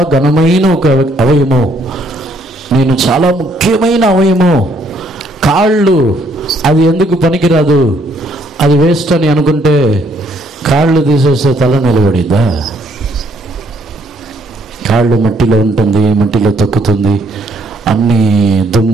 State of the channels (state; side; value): normal; both; correlation 0.68